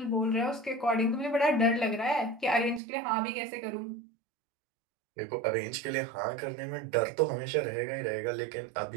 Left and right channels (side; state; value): left; drops out; at 2.8 s